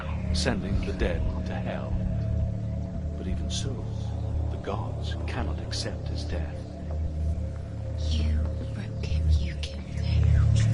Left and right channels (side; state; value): both; identical; correlation 1.00